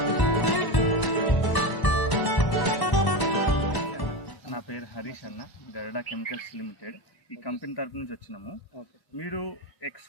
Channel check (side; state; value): right; late; 1.0 ms